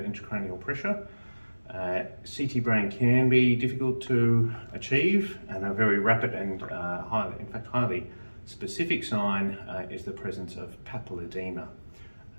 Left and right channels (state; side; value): inverted; both; correlation -1.00